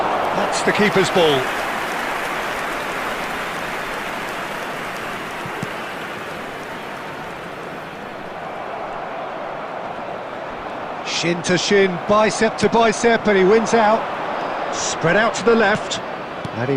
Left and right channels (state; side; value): identical; both; correlation 1.00